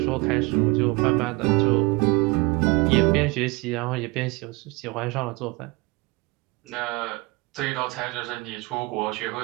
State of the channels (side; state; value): left; quieter; 25.1 dB